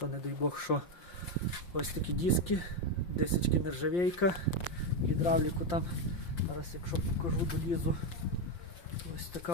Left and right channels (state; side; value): late; right; 5.7 ms